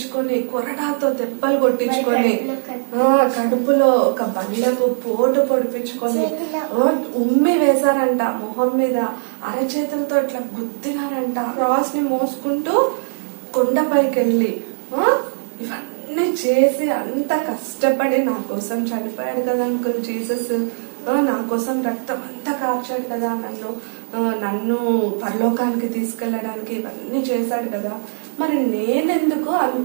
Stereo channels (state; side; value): silent; left; 66 dB below the other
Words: కొరడాతో దెబ్బలు కొట్టించుకొని, కడుపులో ఒక బండకు పోటు పొడిపించుకొని, ఉమ్మి వేశారంట మొహం మీద, అరచేతులతో ఇట్లా గుద్దినారంట, క్రాస్ ని మోసుకుంటూ కొండపైకి వెళ్ళి ఇవన్నీ చేసి అంత కష్టపడి నా కోసం చనిపోయాడు కదా అంకుల్ జీసస్. నా కోసం రక్తం అంతా కార్చాడు కదా, నన్ను పరలోకానికి తీసుకెళ్ళడానికి ఇవన్నీ చేశాడు కదా. మరి నేనెందుకు